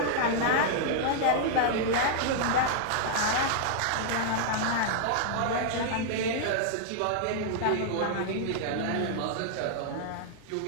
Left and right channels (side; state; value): both; different; correlation -0.01